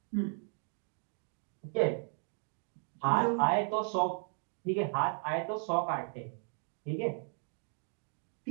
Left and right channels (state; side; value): silent; left; 54 dB below the other